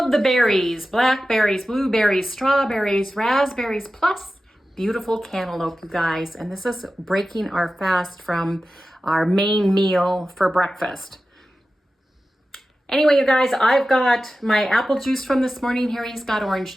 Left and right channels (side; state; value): both; normal; correlation 0.94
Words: the berries, blackberries, blueberries, strawberries, raspberries, plus beautiful cantaloupe, you guys. And this is breaking our fast from our main meal for breakfast. Anyway, you guys, I've got my apple juice from this morning. Harry's got orange